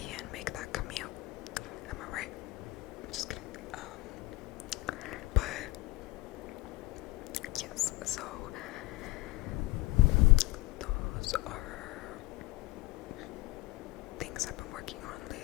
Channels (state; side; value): quieter; right; 20.5 dB